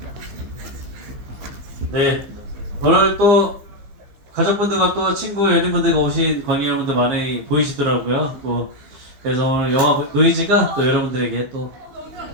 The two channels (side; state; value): left; late; 15 ms